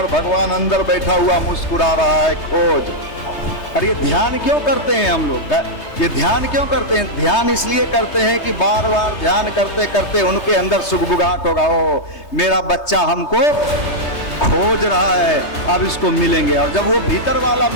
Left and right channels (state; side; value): late; right; 3.2 ms